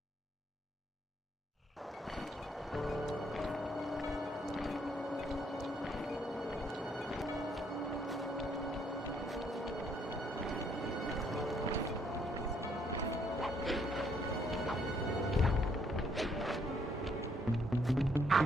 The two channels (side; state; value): both; normal; correlation 0.69